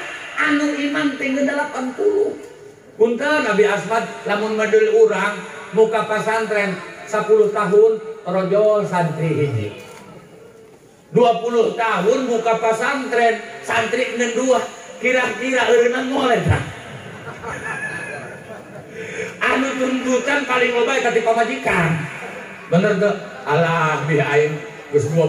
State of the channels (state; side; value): identical; both; correlation 1.00